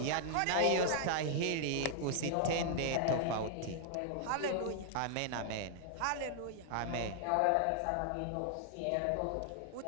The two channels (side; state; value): both; different; correlation 0.00